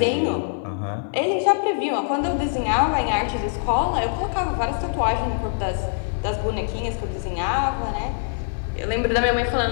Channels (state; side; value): silent; right; 57 dB below the other